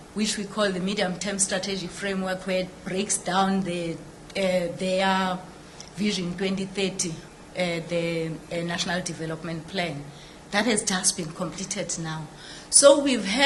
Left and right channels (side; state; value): both; identical; correlation 1.00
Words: which we call the medium-term strategic framework, where it breaks down their Vision 2030, the National Development Plan. That has just been completed now. So we've